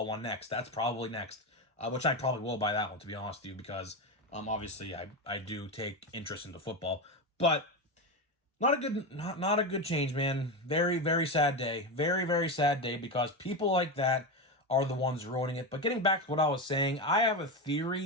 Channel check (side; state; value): both; normal; correlation 0.16